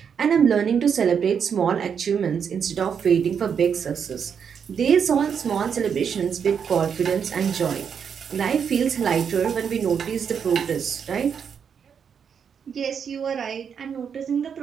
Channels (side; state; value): left; quieter; 7.2 dB